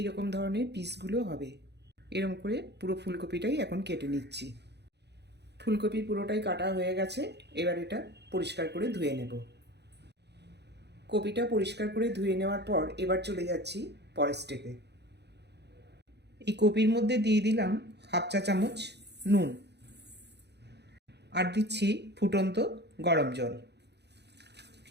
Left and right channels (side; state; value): left; late; 0.49 ms